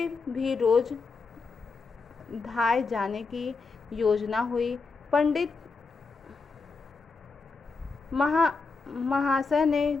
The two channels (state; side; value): quieter; right; 4.4 dB